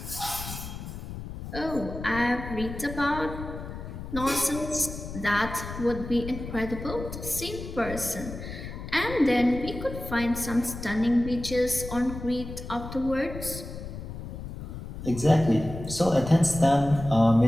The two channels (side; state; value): left; noise; rumble, 9 dB below the sound